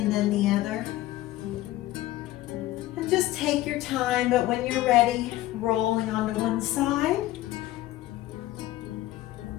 then the other. And just take your time, but when you're ready, rolling onto one side.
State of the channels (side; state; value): right; quieter; 15.8 dB